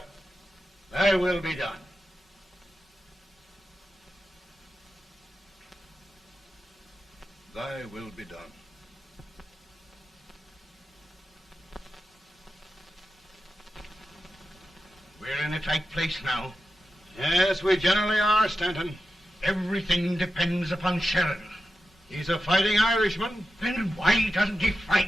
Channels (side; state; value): both; normal; correlation 0.91